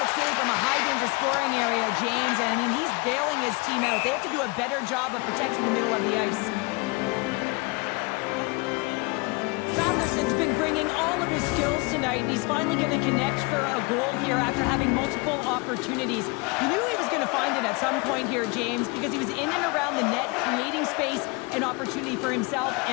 save from a high-danger scoring area, James. And, I mean, he's bailing his team out. They have to do a better job of protecting the middle of the ice. Sanderson's been bringing all of his skills tonight, and he's finally going to connect for a goal here after having multiple opportunities. You knew he was going to find it at some point here, James, because he was in and around the net, creating space and opportunity for himself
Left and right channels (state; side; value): quieter; right; 27.8 dB